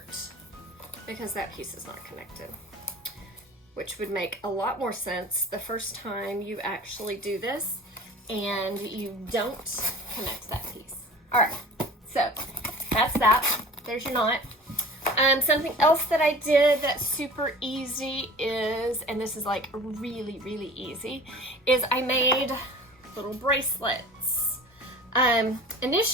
because that piece is not connected, which would make a lot more sense the first time you actually do this and you don't connect that piece. All right, so that's that. There's your knot. Something else that I did that's super easy is, and this is like really, really easy, is I made little bracelets.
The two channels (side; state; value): both; normal; correlation 0.41